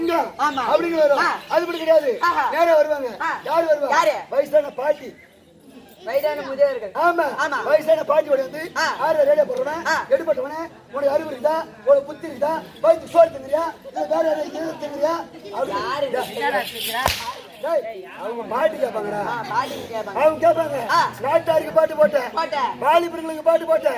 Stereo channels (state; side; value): identical; both; correlation 1.00